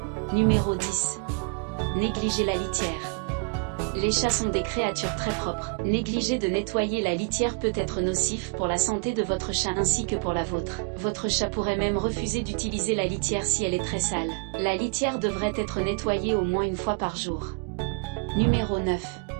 Numéro 10. Négliger la litière. Les chats sont des créatures très propres. Négliger de nettoyer la litière peut être nocif pour la santé de votre chat ainsi que pour la vôtre. Votre chat pourrait même refuser d'utiliser la litière si elle est très sale. La litière devrait être nettoyée au moins une fois par jour. Numéro 9.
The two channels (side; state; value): left; quieter; 36.0 dB